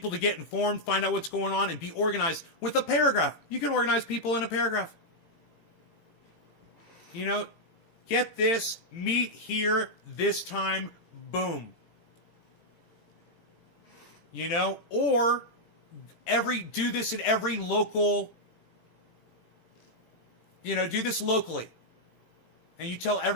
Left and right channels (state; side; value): late; right; 18 ms